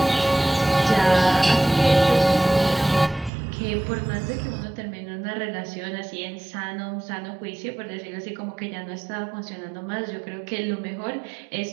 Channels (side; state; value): left; drops out; at 3.3 s